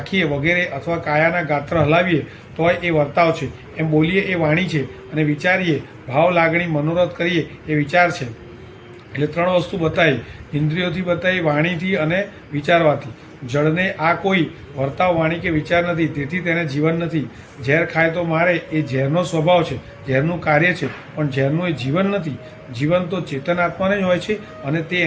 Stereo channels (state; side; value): identical; both; correlation 1.00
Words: વગેરે, અથવા કાયાના ગાત્ર હલાવીએ તોય એ વર્તાવ છે. એમ બોલીએ એ વાણી છે, અને વિચારીએ, ભાવ લાગણી, મનોરથ કરીએ એ વિચાર છે. એટલે 3 વસ્તુ બતાવી, ઇન્દ્રિયોથી બતાવી, વાણીથી અને વિચારવાથી. જળને આ કોઈ વર્તાવ, વાણી કે વિચાર નથી, તેથી તેને જીવન નથી. ઝેર ખાય તો મારે, એ ઝેરનો સ્વભાવ છે, ઝેરનું કાર્ય છે, પણ ઝેરનું એ જીવન નથી. જીવન તો ચેતન આત્માને જ હોય છે, અને તે